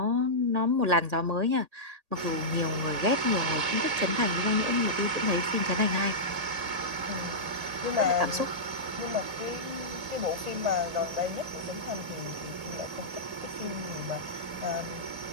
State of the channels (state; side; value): late; left; 1.8 ms